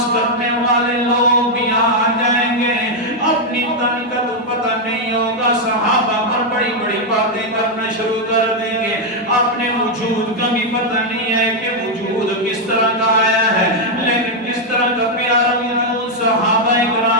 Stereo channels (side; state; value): both; normal; correlation 0.00